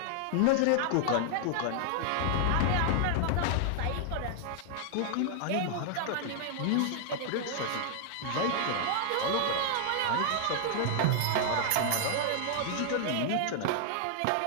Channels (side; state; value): both; different; correlation -0.01